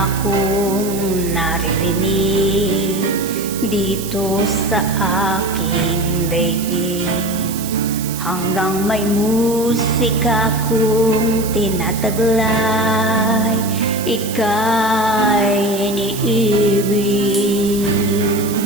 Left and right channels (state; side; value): noise; right; hiss, 10 dB below the sound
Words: akong naririnig dito sa aking daigdig. Hanggang may musika akong tinataglay, ika'y iniibig.